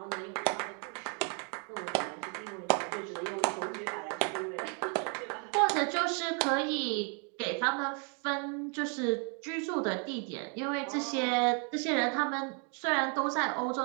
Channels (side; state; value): left; quieter; 38.7 dB